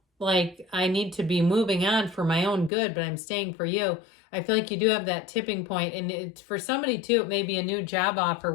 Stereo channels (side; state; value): right; drops out; at 2.7 s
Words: like I need to be moving on for my own good, but I'm staying for you. I feel like you do have that tipping point. And for somebody, too, it may be a new job offer